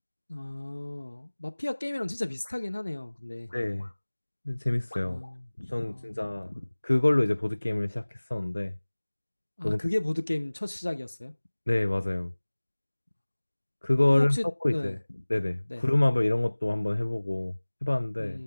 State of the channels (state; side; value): inverted; both; correlation -1.00